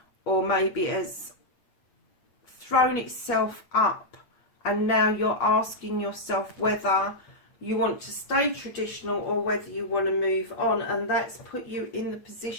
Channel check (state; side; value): late; right; 8.4 ms